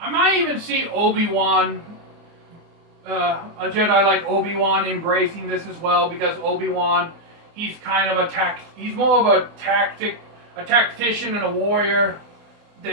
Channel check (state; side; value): late; left; 24 ms